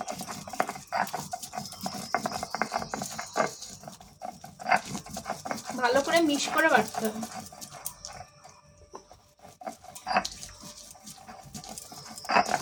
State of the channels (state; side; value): identical; both; correlation 1.00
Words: ভালো করে মিক্স করে বাটতে হবে।